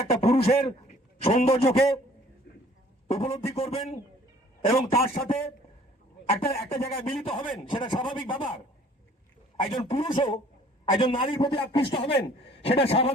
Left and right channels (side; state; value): both; normal; correlation 0.55